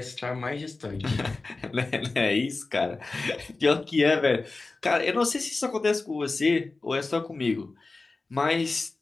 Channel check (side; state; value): right; quieter; 3.6 dB